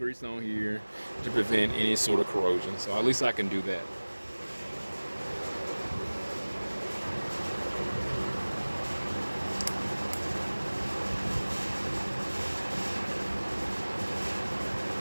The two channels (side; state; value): both; inverted; correlation -1.00